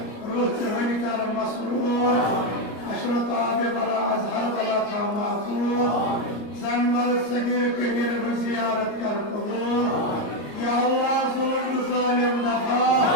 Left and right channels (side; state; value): right; late; 34 ms